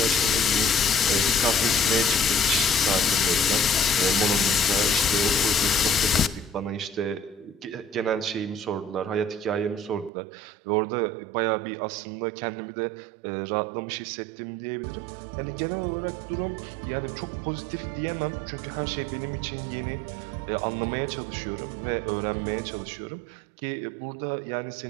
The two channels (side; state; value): left; drops out; at 10.1 s